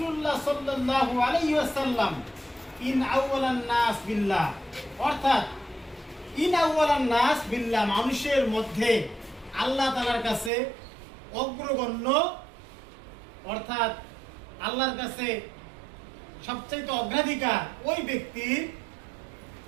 الله صلى الله عليه وسلم ইন আউওয়ালান নাস বিল্লাহ, অর্থাৎ ইন আউওয়ালান নাস বিল্লাহ, মানুষের মধ্যে আল্লাহ তাআলার কাছে অগ্রগণ্য, অর্থাৎ আল্লাহর কাছে সবচেয়ে অগ্রাধিকার ওই ব্যক্তির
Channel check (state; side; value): drops out; left; at 10.5 s